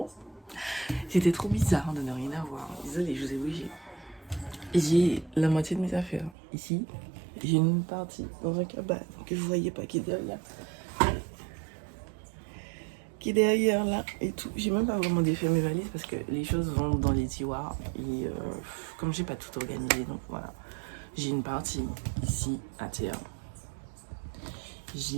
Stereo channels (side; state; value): left; drops out; at 6.4 s